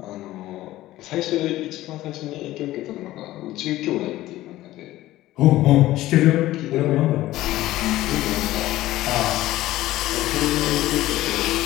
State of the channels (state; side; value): quieter; right; 15.8 dB